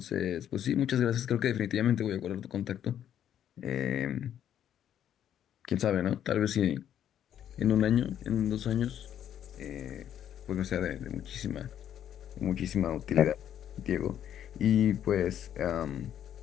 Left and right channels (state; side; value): quieter; right; 10.2 dB